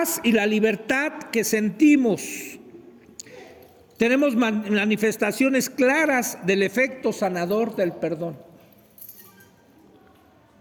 y la libertad que sentimos. Tenemos manifestaciones claras del efecto sanador del perdón.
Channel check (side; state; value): both; identical; correlation 1.00